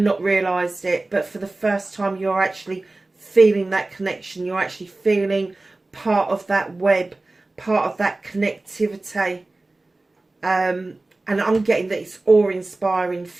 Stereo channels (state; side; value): quieter; left; 3.0 dB